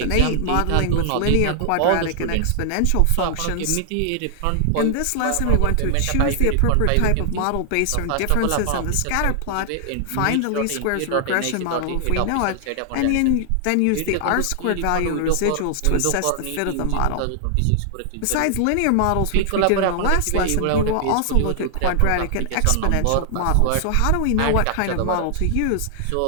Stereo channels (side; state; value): both; different; correlation 0.00